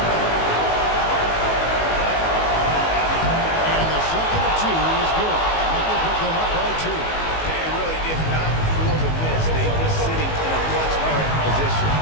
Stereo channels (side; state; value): right; late; 19 ms